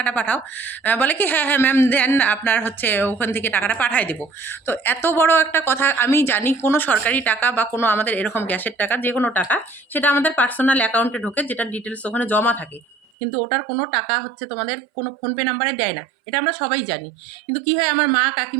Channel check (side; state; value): left; drops out; at 13.0 s